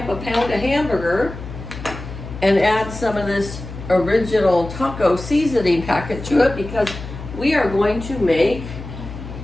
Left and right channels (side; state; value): left; noise; hum, 11 dB below the sound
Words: a pound of hamburger and add some of this original taco seasoning packet to it because we are going to make